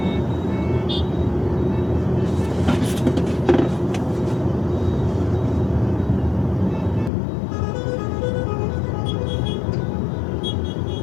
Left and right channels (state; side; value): drops out; right; at 7.1 s